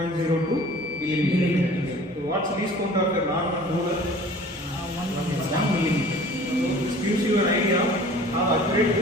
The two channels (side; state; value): both; normal; correlation 0.47